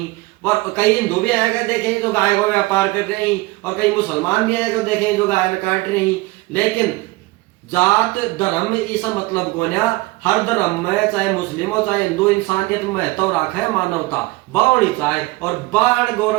और कई हिंदू भी आएगा देखे जो गाय को व्यापार कर रहे हैं, और कई मुसलमान भी आएगा देखे जो गाय में काट रहे हैं। लेकिन जात धर्म इस मतलब को ना, हर धर्म में चाहे मुस्लिम हो चाहे हिंदू इंसानियत में महत्व रखे मानवता बावणी चाहे, और बाण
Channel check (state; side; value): quieter; left; 21.5 dB